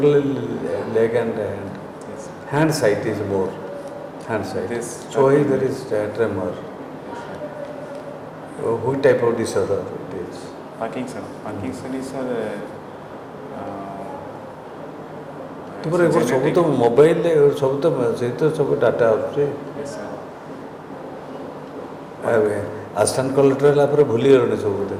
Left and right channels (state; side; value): identical; both; correlation 1.00